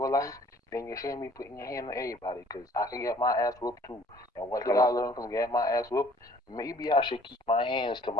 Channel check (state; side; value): normal; both; correlation 0.56